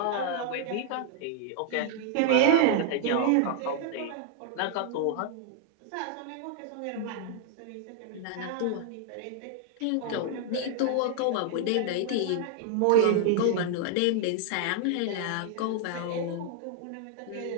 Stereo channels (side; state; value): both; different; correlation 0.00